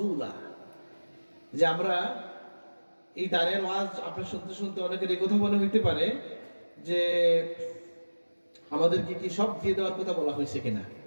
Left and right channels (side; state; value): both; inverted; correlation -1.00